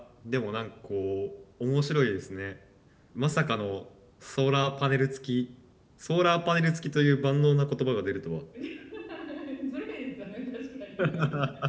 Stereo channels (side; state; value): both; identical; correlation 1.00